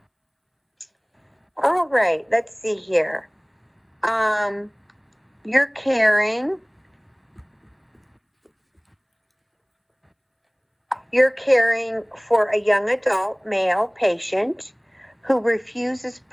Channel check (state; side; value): identical; both; correlation 1.00